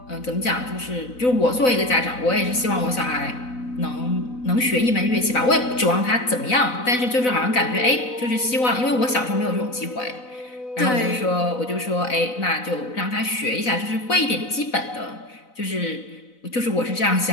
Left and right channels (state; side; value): late; right; 4.0 ms